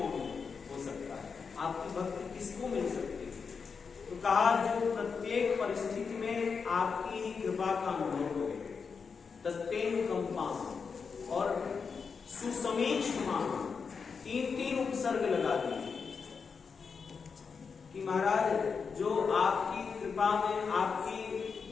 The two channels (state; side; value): quieter; right; 5.6 dB